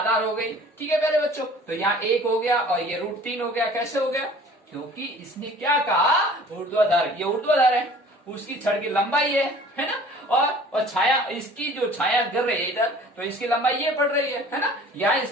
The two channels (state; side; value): normal; both; correlation 0.48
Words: हो गई। ठीक है प्यारे बच्चों, तो यहाँ 1 हो गया और ये √3 हो गया। कैसे हो गया? क्योंकि इसने क्या कहा, ऊर्ध्वाधर, ये ऊर्ध्वाधर है, उसकी छड़ की लंबाई है ना, और छाया, इसकी जो छाया गिर रही है इधर, तो इसकी लंबाई ये पड़ रही है ना, यहाँ